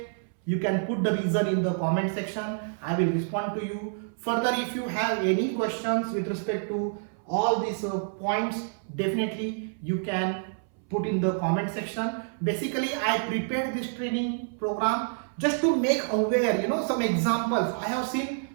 you can put the reason in the comment section. I will respond to you. Further, if you have any questions with respect to all these points, definitely you can put in the comment section. Basically, I prepared this training program just to make aware, some examples. I have seen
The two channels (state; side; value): silent; left; 59 dB below the other